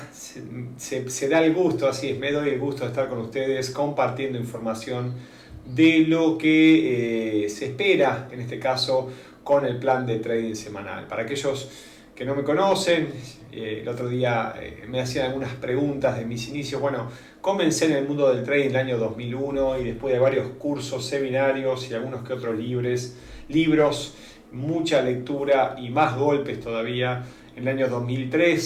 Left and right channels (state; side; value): identical; both; correlation 1.00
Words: se da el gusto, así es, me doy el gusto de estar con ustedes compartiendo información de lo que se espera, en este caso, con el plan de trading semanal. Para aquellos que no me conocen, el otro día me hacían algunas preguntas de mis inicios. Bueno, comencé en el mundo del trading en el año 2001 y después de varios cursos, seminarios y algunos que otros libros, mucha lectura y más golpes todavía. En el año